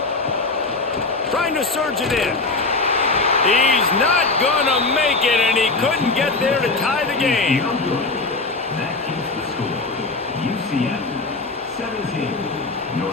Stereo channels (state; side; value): quieter; right; 3.6 dB